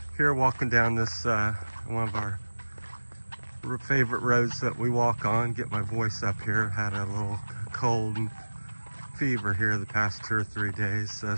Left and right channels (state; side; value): inverted; both; correlation -1.00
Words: Here walking down this, one of our favorite roads that we walk on. Get my voice up here. Had a little cold and fever here the past 2 or 3 days.